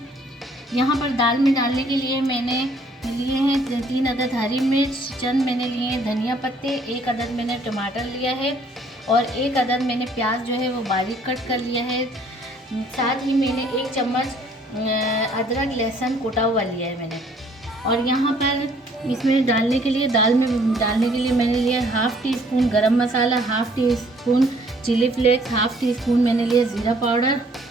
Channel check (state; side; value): normal; both; correlation 0.61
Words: यहाँ पर दाल में डालने के लिए मैंने लिए हैं 3 अदद हरी मिर्च, चंद मैंने लिए हैं धनिया पत्ते, 1 अदद मैंने टमाटर लिया है और 1 अदद मैंने प्याज जो है वो बारीक कट कर लिया है। साथ ही मैंने 1 चम्मच अदरक लहसुन कुटा हुआ लिया है मैंने। और यहाँ पर इसमें डालने के लिए दाल में डालने के लिए मैंने लिया 1/2 teaspoon garam masala, 1/2 teaspoon chilli flakes, 1/2 teaspoon मैंने लिया ज़ीरा पाउडर,